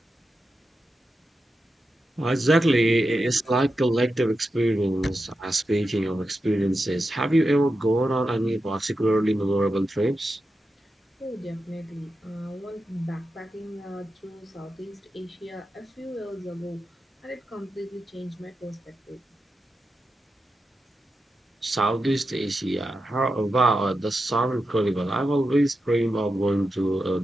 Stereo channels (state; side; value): normal; both; correlation 0.89